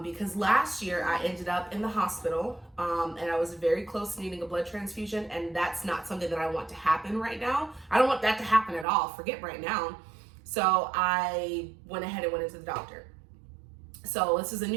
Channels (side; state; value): left; drops out; at 8.8 s